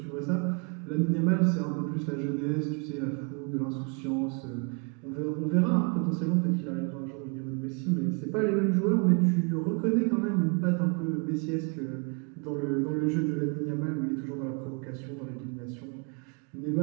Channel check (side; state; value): left; quieter; 35.0 dB